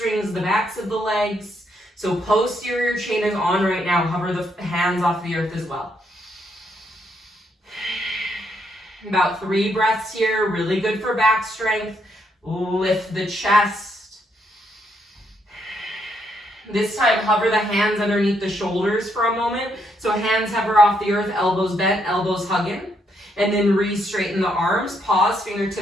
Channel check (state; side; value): normal; both; correlation 0.75